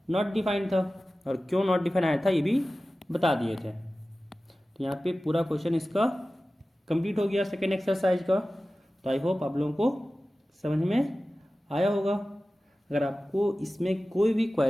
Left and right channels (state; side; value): normal; both; correlation 0.96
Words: नॉट डिफाइंड था, और क्यों नॉट डिफाइंड आया था ये भी बता दिए थे। तो यहाँ पे पूरा क्वेश्चन इसका कंप्लीट हो गया सेकेंड एक्सरसाइज का। तो आई होप आप लोगों को समझ में आया होगा। अगर आपको इसमें कोई भी